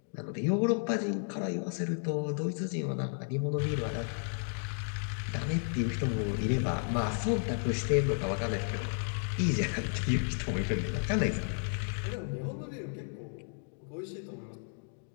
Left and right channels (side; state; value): right; silent; 55 dB below the other